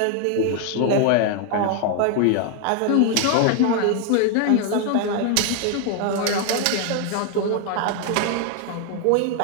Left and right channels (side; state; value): both; different; correlation 0.00